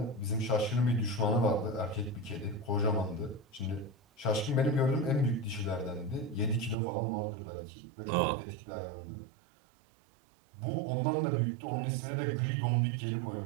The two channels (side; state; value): left; drops out; at 6.8 s